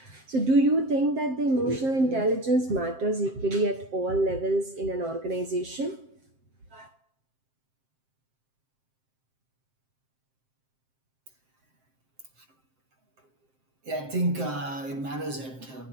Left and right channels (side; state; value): left; late; 7.6 ms